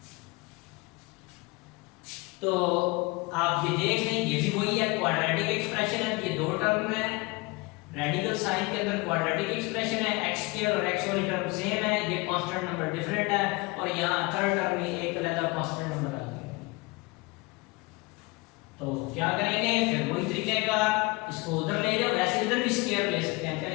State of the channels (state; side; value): quieter; right; 25.4 dB